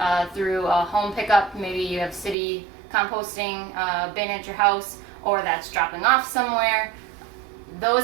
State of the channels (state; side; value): drops out; left; at 2.4 s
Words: through a home pickup, maybe you have city composting bin at your house, or that's dropping off somewhere.